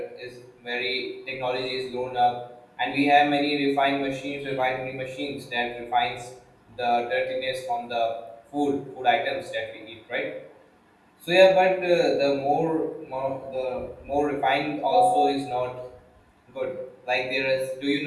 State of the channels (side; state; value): both; identical; correlation 1.00